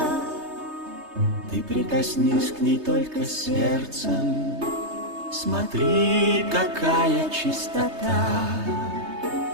ты прикоснись к ней только сердцем. Смотри, какая чистота,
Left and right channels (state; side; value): late; left; 3.2 ms